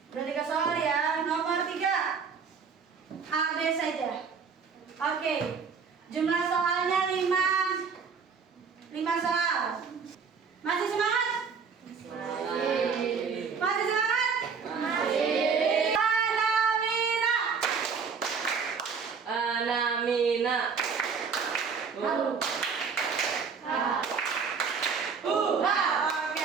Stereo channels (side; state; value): left; quieter; 5.8 dB